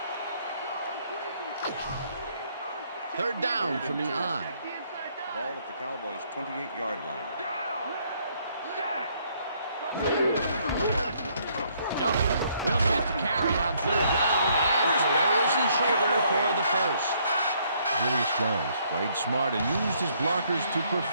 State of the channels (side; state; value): both; inverted; correlation -0.67